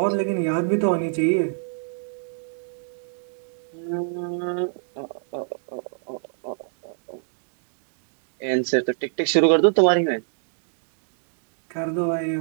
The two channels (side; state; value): left; silent; digital silence